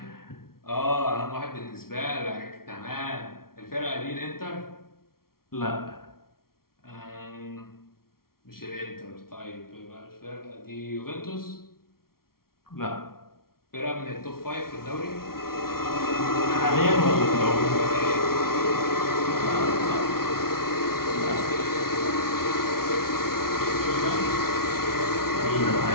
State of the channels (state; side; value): late; right; 0.93 ms